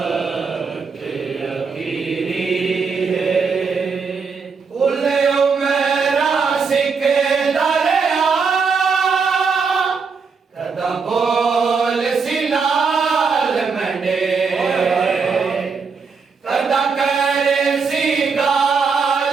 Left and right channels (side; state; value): left; quieter; 5.2 dB